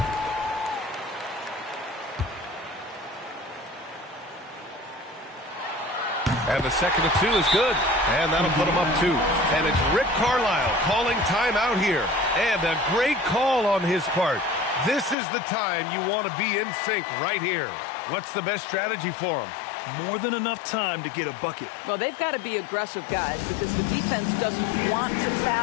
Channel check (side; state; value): right; drops out; at 15.2 s